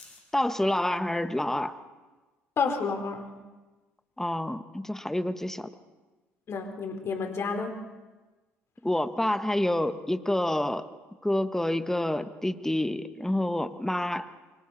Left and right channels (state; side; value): normal; both; correlation 0.93